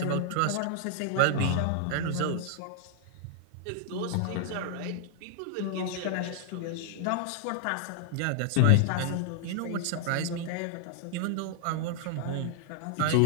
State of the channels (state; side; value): different; both; correlation -0.01